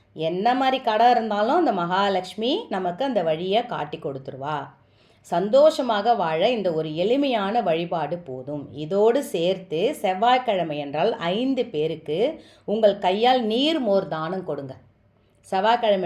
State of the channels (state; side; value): identical; both; correlation 1.00